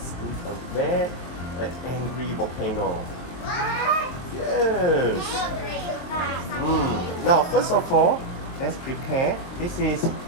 an angry volcano. Yes. Now, first of all, let's prepare. This is, do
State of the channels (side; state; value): right; late; 23 ms